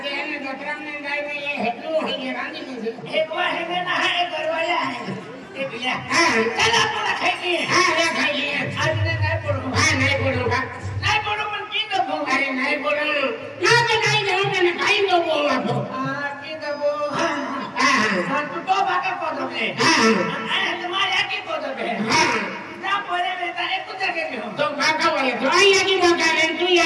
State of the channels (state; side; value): identical; both; correlation 1.00